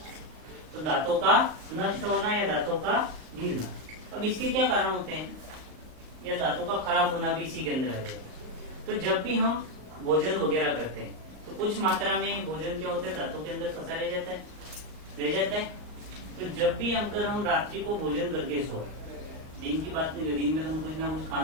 तो दांतों का नष्ट होना या दांतों का गिरना। अब इसके क्या कारण होते हैं? या दांतों का खराब होना भी इसी के अंदर आ जाएगा। तो जब भी हम भोजन वगैरह करते हैं तो कुछ मात्रा में भोजन क्या होता है, दांतों के अंदर फंसा रह जाता है। तो जब भी हम रात्रि को भोजन करके सोए, दिन की बात नहीं, दिन में तो हम कुछ ना कुछ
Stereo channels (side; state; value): left; late; 38 ms